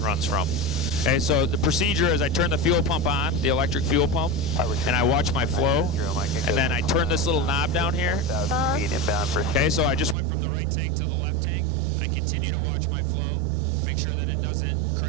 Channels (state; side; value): drops out; left; at 10.2 s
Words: from. Okay, so the procedure is I turn the fuel pump on, the electric fuel pump, and I watch my flow, and then I turn this little knob down here. Okay, so I just went from the right tank to the left tank. I continue to watch my flow, make sure that it doesn't